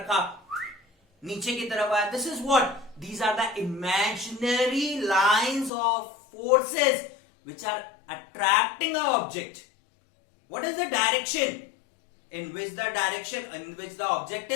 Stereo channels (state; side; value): drops out; right; at 5.7 s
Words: नीचे की तरफ आया, this is what, these are the imaginary lines of forces which are attracting a object. What is the direction in which the object